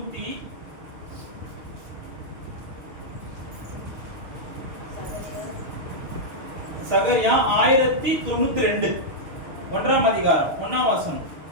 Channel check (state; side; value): late; left; 6.4 ms